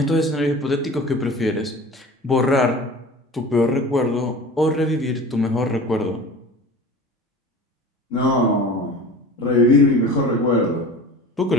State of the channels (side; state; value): both; normal; correlation 0.38